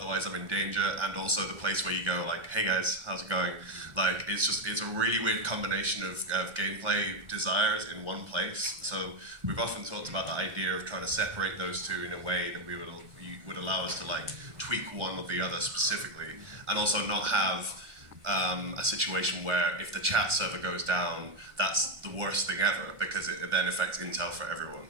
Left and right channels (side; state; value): left; late; 1.4 ms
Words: I'm in danger, and also the place where you go like, hey guys, how's it going? Like it's a really weird combination of gameplay desires in one place. So we've often talked about the idea of trying to separate those two in a way that would allow us to like tweak one or the other specifically, and also not have a situation where if the chat server goes down, that's the worst thing ever, because it then affects intel for everyone.